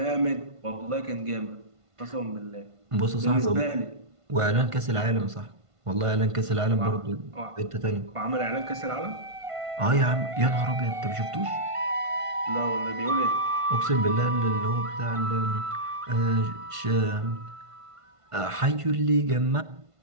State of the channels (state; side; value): late; left; 1.5 ms